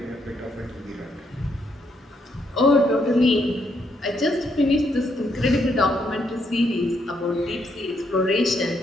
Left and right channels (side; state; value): both; normal; correlation 0.75